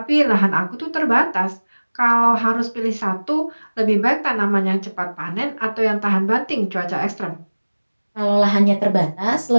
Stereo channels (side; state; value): both; inverted; correlation -1.00